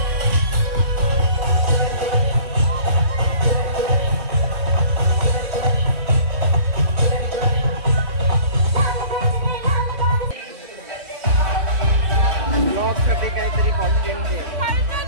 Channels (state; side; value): late; left; 3.7 ms